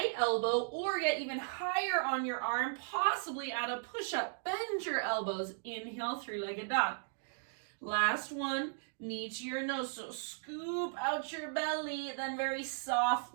elbow, or get even higher on your arm, possibly add a push-up. Bend your elbows. Inhale, 3-legged dog. Last one, knee to your nose, so scoop out your belly, then very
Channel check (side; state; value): left; silent; digital silence